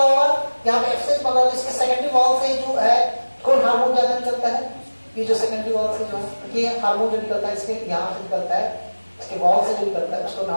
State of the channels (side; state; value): both; inverted; correlation -1.00